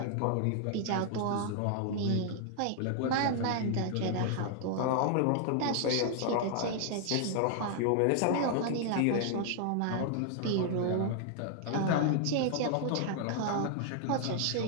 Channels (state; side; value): different; both; correlation 0.00